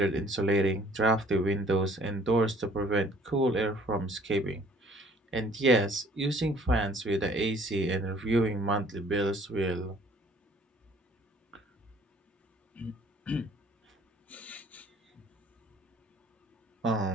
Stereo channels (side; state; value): both; normal; correlation 0.56